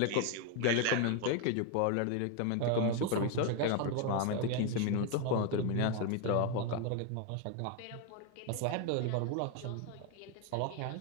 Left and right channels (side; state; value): both; different; correlation 0.01